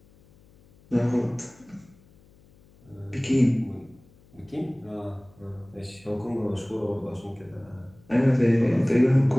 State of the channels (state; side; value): noise; left; hum, 28 dB below the sound